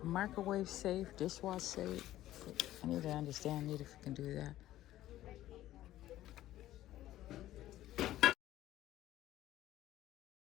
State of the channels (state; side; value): quieter; right; 14.1 dB